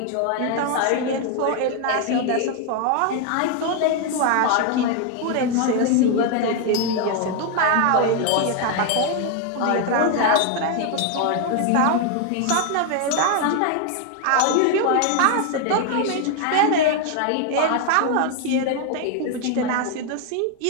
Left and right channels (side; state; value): both; different; correlation 0.01